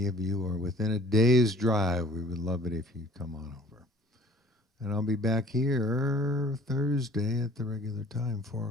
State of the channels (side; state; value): both; normal; correlation 0.51